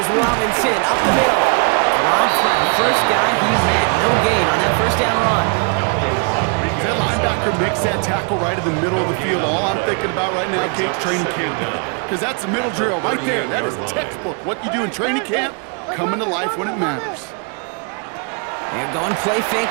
Robinson up the middle. Rob's by the first guy he met. No gain on that first down run. That linebacker makes that tackle right in the middle of the field. All I'm thinking about right now, Kate, training camp. Because that's the middle drill right there. That is textbook. What you do in training camp, coming to life when it matters. They're going play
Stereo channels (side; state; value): left; quieter; 37.9 dB